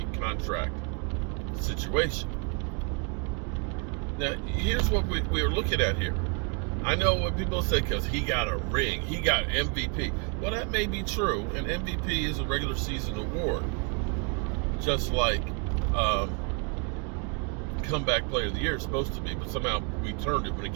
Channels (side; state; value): left; quieter; 34.6 dB